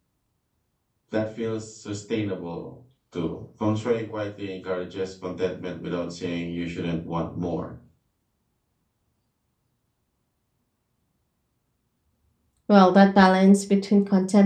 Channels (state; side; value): identical; both; correlation 1.00